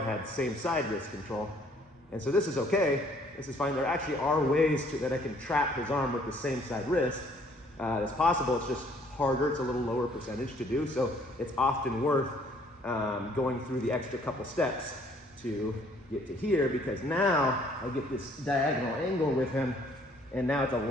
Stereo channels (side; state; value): both; normal; correlation 0.61